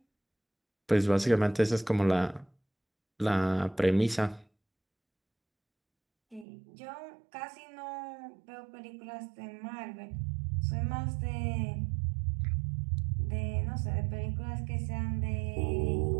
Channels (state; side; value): drops out; left; at 6.5 s